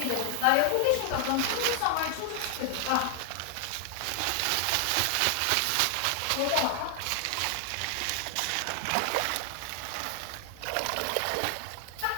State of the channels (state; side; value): different; both; correlation 0.00